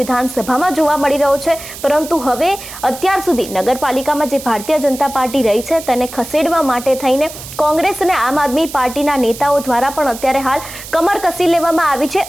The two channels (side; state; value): right; noise; hiss, 13 dB below the sound